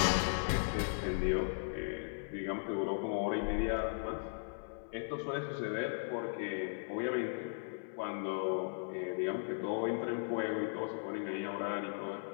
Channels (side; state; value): right; silent; 53 dB below the other